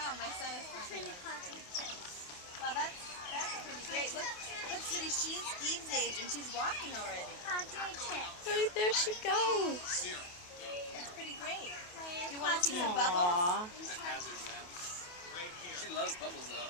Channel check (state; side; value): late; right; 28 ms